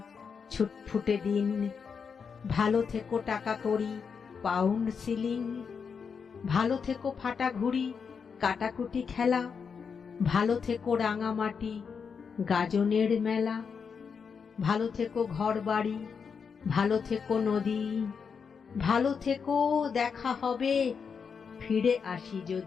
ছুটফুটে দিন। ভালো থেকো টাকা কড়ি, পাউন্ড সিলিং। ভালো থেকো ফাটা ঘুড়ি, কাটাকুটি খেলা। ভালো থেকো রাঙামাটি, গাজনের মেলা। ভালো থেকো ঘর বাড়ি, ভালো থেকো নদী। ভালো থেকো, দেখা হবে, ফিরে আসি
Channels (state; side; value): quieter; right; 6.1 dB